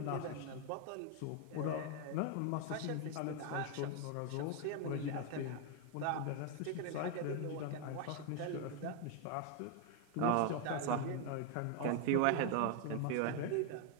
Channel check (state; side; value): different; both; correlation 0.01